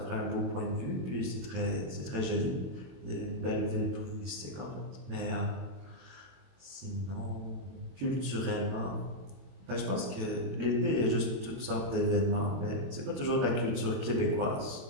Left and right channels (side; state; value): left; late; 22 ms